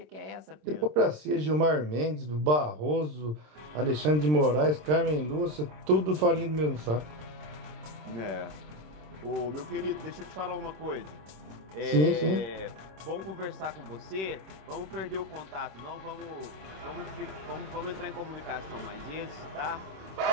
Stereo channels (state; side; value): late; left; 26 ms